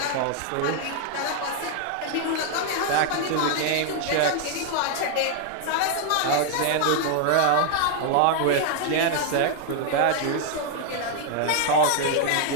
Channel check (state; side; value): different; both; correlation 0.00